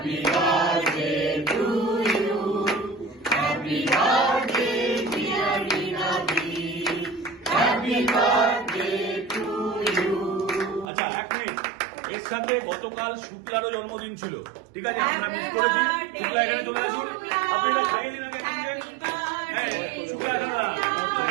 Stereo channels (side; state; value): left; drops out; at 10.9 s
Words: birthday to you. Happy birthday, dear Rinadi. Happy birthday to you. আচ্ছা, এক মিনিট। এর সাথে গতকাল শুক্লারও জন্মদিন ছিল, ঠিক আছে? আমরা মিস করেছি। শুক্লা এখানে চলে আসুন, আপনি এটা খাইয়ে দিন আগে। হ্যাঁ, শুক্লা এখানে না, শুক্লা